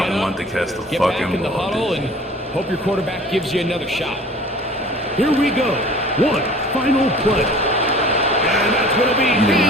get back in the huddle, and hope your quarterback gives you another shot. Here we go. One final play. And that's going to be You did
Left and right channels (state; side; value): normal; both; correlation 0.46